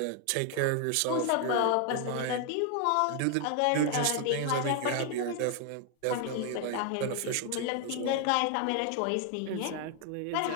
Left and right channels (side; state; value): both; different; correlation 0.00